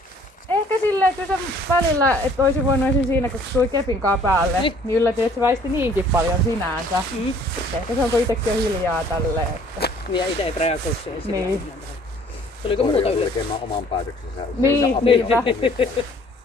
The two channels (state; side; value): normal; both; correlation 0.57